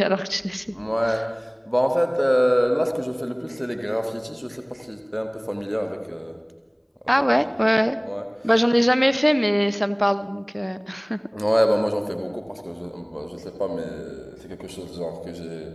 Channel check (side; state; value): both; identical; correlation 1.00